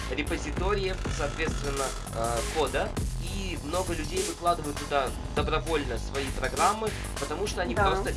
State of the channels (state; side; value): identical; both; correlation 1.00